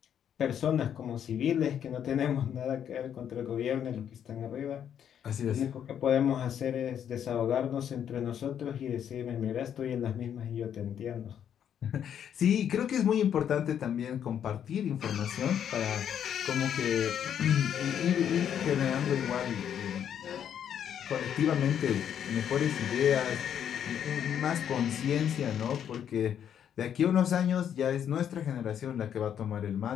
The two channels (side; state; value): right; quieter; 9.1 dB